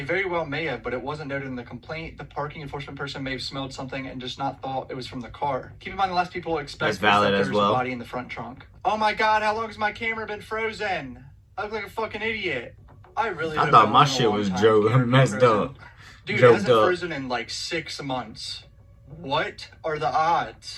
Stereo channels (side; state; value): both; identical; correlation 1.00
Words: very well may have, but it wasn't noted in the complaint. The parking enforcement person may have smelled something and just not thought it was from the car. Keep in mind the last people expect is that there's a body in the front trunk. Oh my god, how long has my camera been frozen? I look like a fucking idiot. I thought my shit was messed up. Dude, it hasn't frozen in like 6 months. What are the